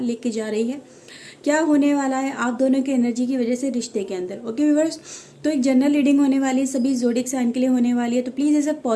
लेके जा रही है, क्या होने वाला है आप दोनों की एनर्जी की वजह से रिश्ते के अंदर। ओके व्यूअर्स, तो एक जनरल रीडिंग होने वाली है, सभी ज़ोडिएक साइन के लिए होने वाली है। तो प्लीज़ इसे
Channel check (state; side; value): identical; both; correlation 1.00